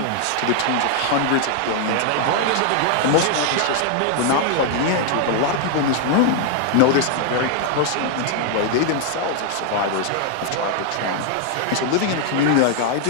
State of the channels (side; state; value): both; different; correlation 0.00